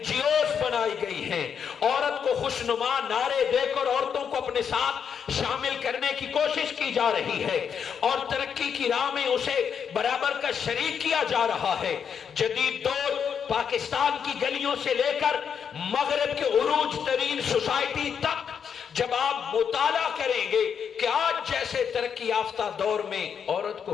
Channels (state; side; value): quieter; right; 7.3 dB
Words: جی اوز بنائی گئی ہیں، عورت کو خوشنما نعرے دے کر عورتوں کو اپنے ساتھ شامل کرنے کی کوشش کی جا رہی ہے اور ترقی کی راہ میں اسے برابر کا شریک کیا جا رہا ہے۔ جدید دور پاکستان کی گلیوں سے لے کر مغرب کے عروج ترین سوسائٹی تک جب آپ مطالعہ کریں گے کہ آج جیسے ترقی یافتہ دور میں عورت کو